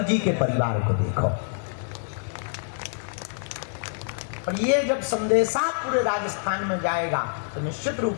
जी के परिवार को देखो। और ये जब संदेशा पूरे राजस्थान में जाएगा तो निश्चित रूप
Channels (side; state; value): right; silent; digital silence